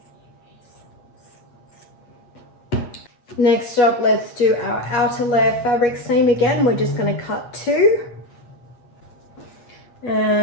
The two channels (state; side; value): late; right; 8.2 ms